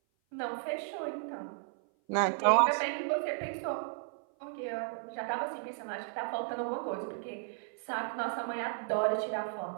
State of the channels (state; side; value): silent; left; 55 dB below the other